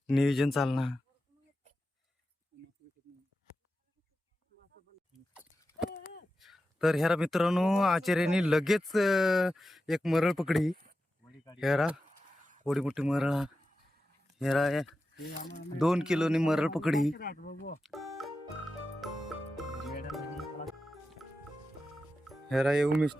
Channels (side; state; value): both; normal; correlation 0.91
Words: नियोजन चालणार. तर हेरा मित्रांनो आचार्याने लगेच एक मरळ पकडी. हेरा थोडी मोठी मरळ हेरा 2 किलोनी मरळ पकडी. हेरा ये